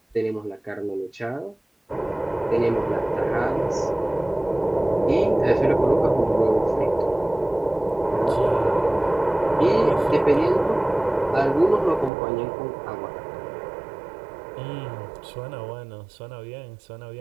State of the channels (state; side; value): drops out; left; at 12.1 s